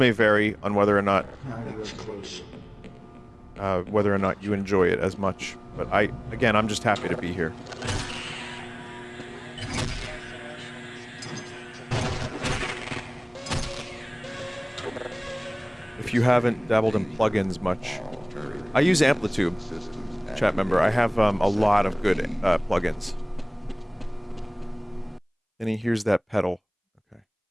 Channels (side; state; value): both; identical; correlation 1.00